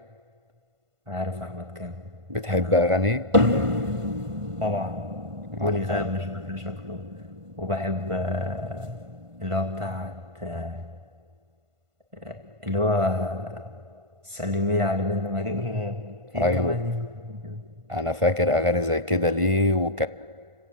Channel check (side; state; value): left; late; 1.5 ms